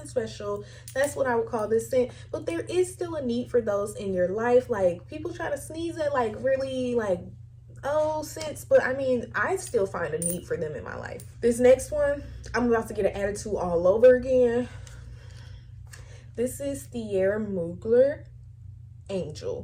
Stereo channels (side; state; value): both; identical; correlation 1.00